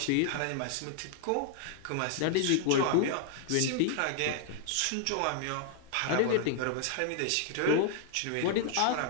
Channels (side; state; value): both; different; correlation -0.01